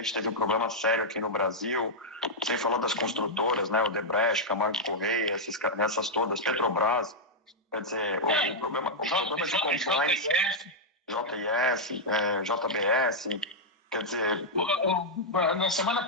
teve um problema sério aqui no Brasil, sem falar das construtoras, né? Odebrecht, Camargo Correia, essas todas, Petrobras, quer dizer, o problema de compliance, JIS, JBS, quer dizer... Na semana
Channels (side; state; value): both; normal; correlation -0.05